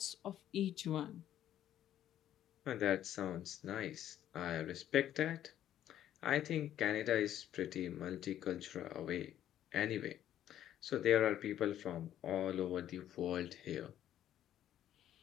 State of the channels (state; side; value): quieter; right; 11.5 dB